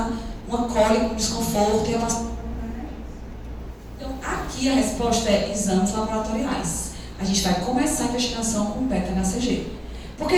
uma cólica, um desconforto e a aqui a resposta é exames laboratoriais. A gente vai começar a investigação com beta-HCG. Porque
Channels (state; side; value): identical; both; correlation 1.00